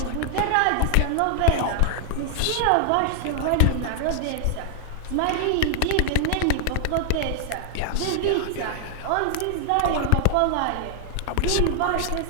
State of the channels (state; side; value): different; both; correlation -0.01